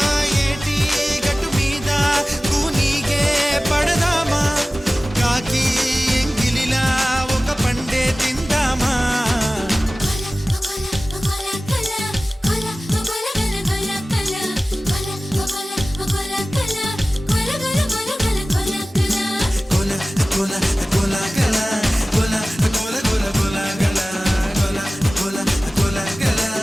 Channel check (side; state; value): both; normal; correlation 0.97